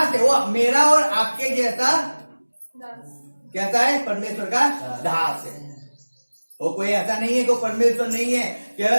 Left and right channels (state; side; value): inverted; both; correlation -1.00